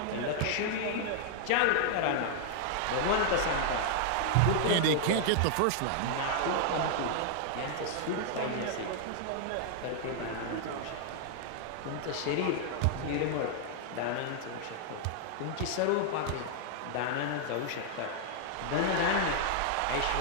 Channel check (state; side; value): different; both; correlation 0.00